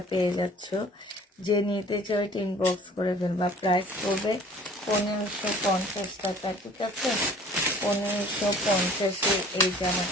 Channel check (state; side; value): normal; both; correlation 0.50